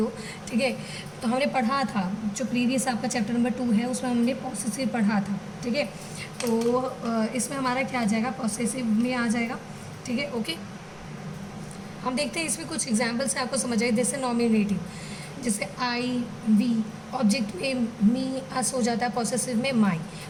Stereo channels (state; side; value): identical; both; correlation 1.00